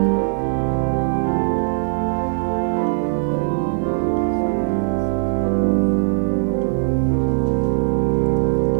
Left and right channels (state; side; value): silent; left; digital silence